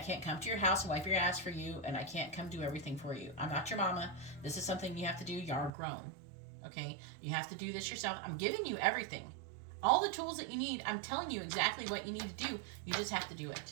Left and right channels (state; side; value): drops out; left; at 5.7 s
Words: come to your house and wipe your ass for you, and I can't come do everything for you. I'm not your mama. This is something you have to do. You're grown. Okay? You have to do this yourself. I'm giving you everything. All the tools that you need, I'm telling you exactly what you need to do. You just have to do